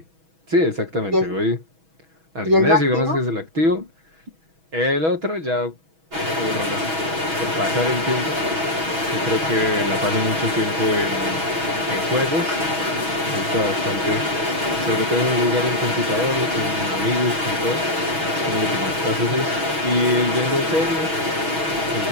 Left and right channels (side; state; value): left; late; 6.2 ms